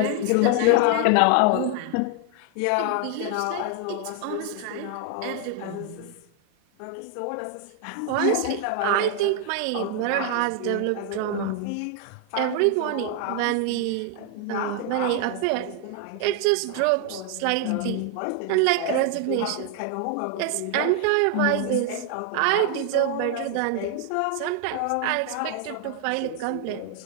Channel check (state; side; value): different; both; correlation 0.00